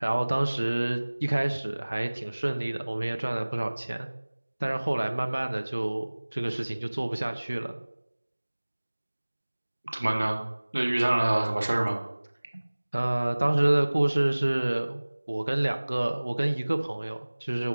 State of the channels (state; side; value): inverted; both; correlation -1.00